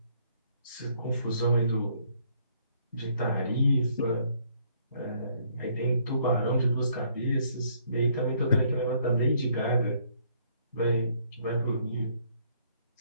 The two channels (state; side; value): inverted; both; correlation -0.66